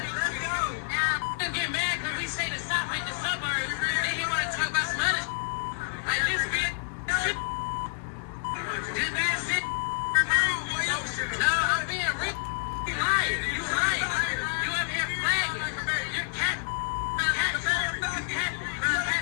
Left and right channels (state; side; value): silent; right; digital silence